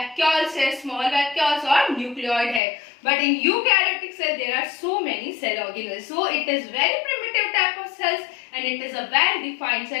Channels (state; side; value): drops out; right; at 2.6 s